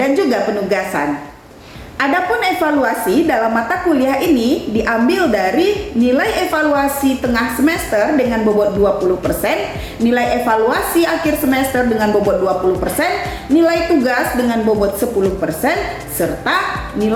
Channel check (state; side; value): identical; both; correlation 1.00